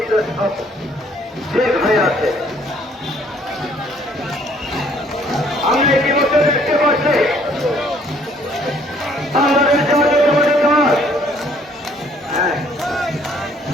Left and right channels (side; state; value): both; normal; correlation 0.62